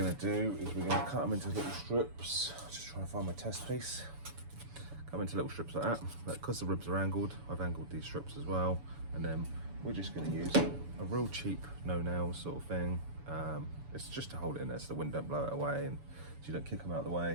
to do is we're going to cut them into little strips. Just trying to find my test piece. Cut them into little strips like that. But because the ribs are angled, I've angled these strips as well. And then we're just going to use a real cheap no nails sort of thing. It's just to hold it in there so the wind don't blow it away and so you don't kick them out of the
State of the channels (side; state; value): left; late; 7.0 ms